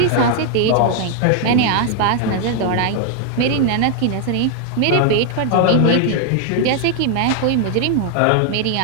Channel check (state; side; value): different; both; correlation 0.00